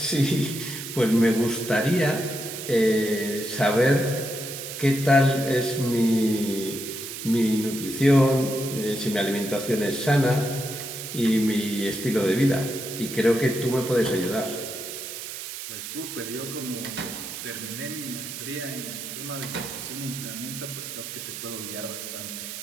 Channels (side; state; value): right; noise; hiss, 8 dB below the sound